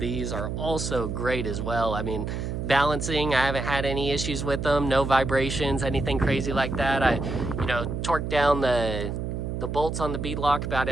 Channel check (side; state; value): right; noise; hum, 3 dB below the sound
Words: are also great as well. I mean, balancing, I haven't had any issues with them. No vibrations, anything crazy like that. I, torqued down the bolts on the bead lock about